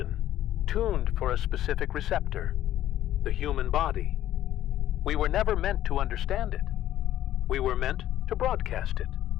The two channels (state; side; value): quieter; right; 12.7 dB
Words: tuned for a specific receptor, the human body. We were never meant to understand it. We were meant to broadcast it.